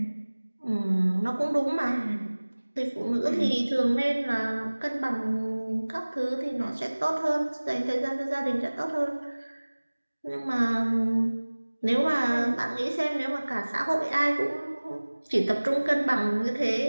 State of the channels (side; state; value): both; inverted; correlation -1.00